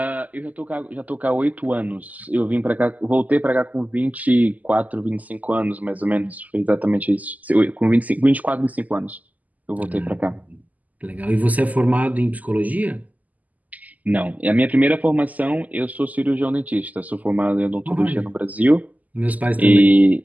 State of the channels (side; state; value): left; late; 0.079 ms